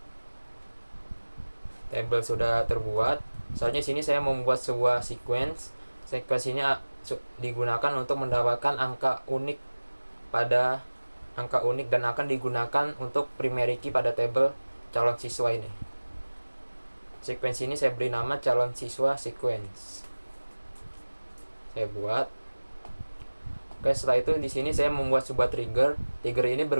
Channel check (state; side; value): inverted; both; correlation -1.00